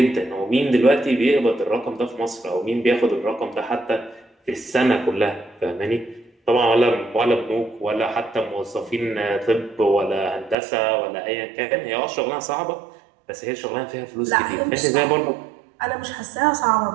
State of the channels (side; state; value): left; drops out; at 10.6 s